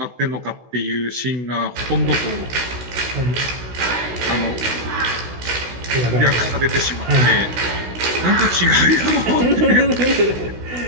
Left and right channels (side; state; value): left; late; 16 ms